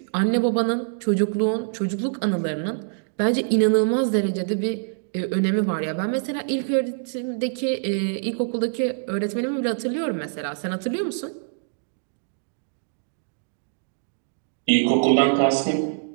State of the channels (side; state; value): left; silent; digital silence